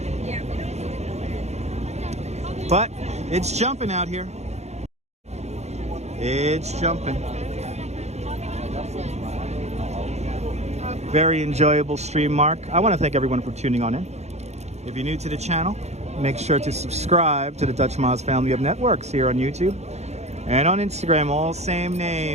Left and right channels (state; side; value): late; left; 0.32 ms